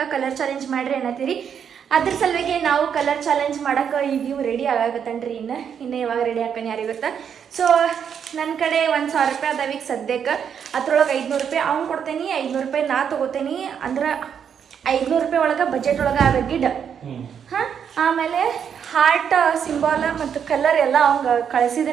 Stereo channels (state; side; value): quieter; left; 7.8 dB